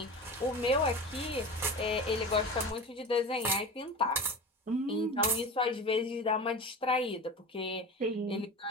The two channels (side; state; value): both; normal; correlation 0.31